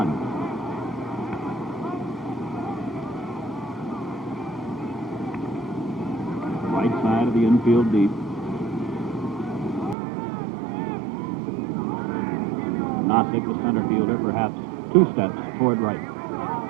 Right side of the infield deep. Nossick, the center fielder, perhaps 2 steps toward right.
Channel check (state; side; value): drops out; left; at 10.0 s